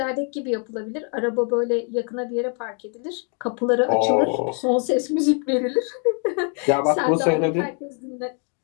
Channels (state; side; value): quieter; right; 39.5 dB